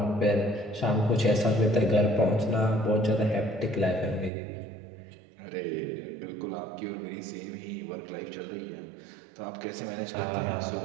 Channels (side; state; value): left; drops out; at 4.3 s